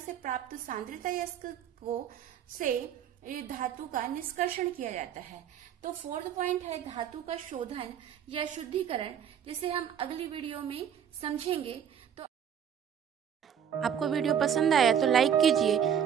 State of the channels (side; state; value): left; quieter; 8.7 dB